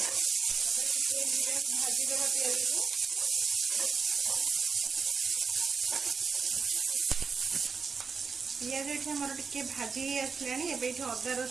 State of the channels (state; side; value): quieter; left; 5.3 dB